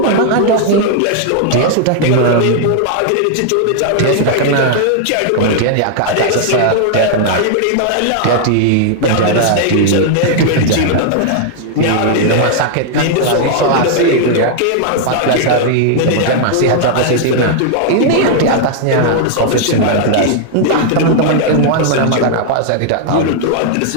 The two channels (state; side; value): different; both; correlation 0.00